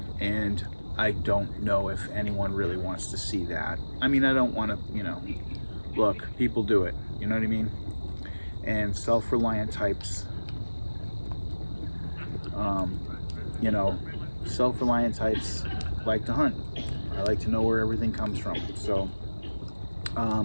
and I don't know if anyone really wants to see that. I mean, I don't want to, you know, look, people do it, you know what I mean? And self-reliant types, you know, self-reliant types like to hunt. I like to know where everything comes from. So,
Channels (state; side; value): inverted; both; correlation -1.00